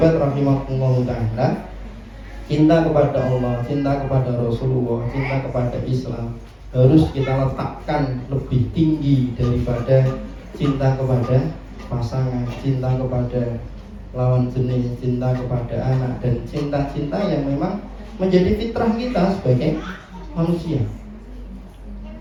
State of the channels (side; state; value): both; identical; correlation 1.00